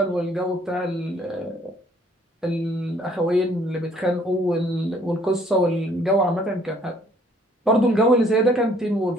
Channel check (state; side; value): normal; both; correlation 0.61